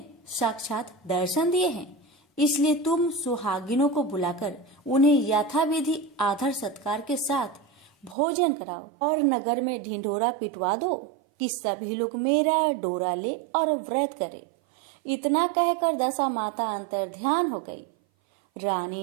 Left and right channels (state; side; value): drops out; left; at 8.2 s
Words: साक्षात दर्शन दिए हैं, इसलिए तुम सुहागिनों को बुलाकर उन्हें यथाविधि आदर सत्कार के साथ भोजन कराओ और नगर में ढिंढोरा पिटवा दो कि सभी लोग मेरा डोरा ले और व्रत करे। इतना कहकर दशा माता अंतर्ध्यान हो गई।